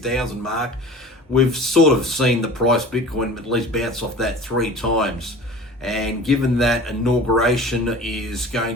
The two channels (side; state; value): both; normal; correlation 0.40